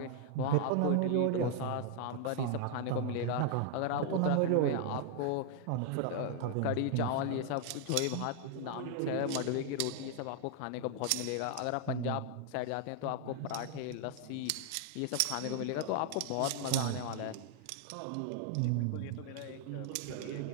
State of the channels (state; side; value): different; both; correlation 0.00